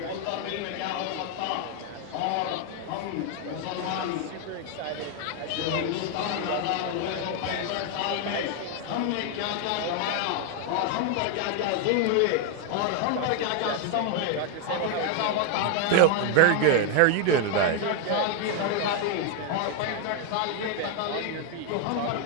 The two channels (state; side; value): different; both; correlation 0.01